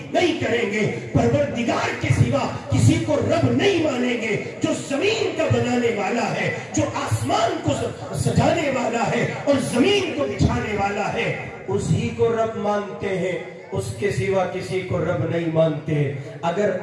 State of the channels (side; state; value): both; identical; correlation 1.00